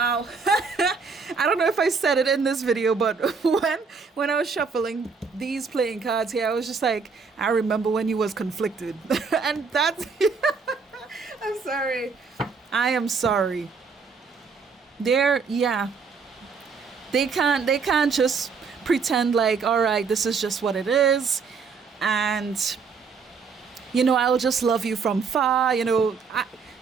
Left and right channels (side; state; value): left; quieter; 5.2 dB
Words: I don't know if I said it in this video, but when I was shuffling these playing cards here, I was just like, I remember when you was conflicted. And that's I'm sorry. I am sorry. They can't just pretend like, all right, this is just what it is, and I'll just love you from far.